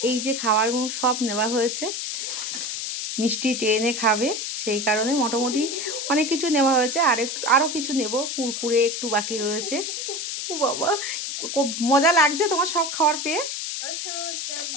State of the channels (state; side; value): noise; left; hiss, 4 dB below the sound